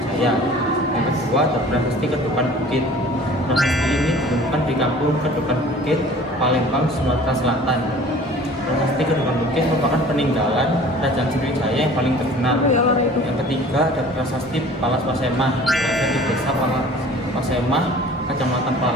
Yang kedua ada Prasasti Kedupan Bukit. Prasasti ini ditemukan di Kampung Kedupan Bukit, Palembang, Sumatera Selatan. Prasasti Kedupan Bukit merupakan peninggalan Kerajaan Sriwijaya yang paling terkenal. Yang ketiga ada Prasasti Palas Pasemah, berada di Desa Pasemah, Kecamatan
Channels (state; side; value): normal; both; correlation 0.46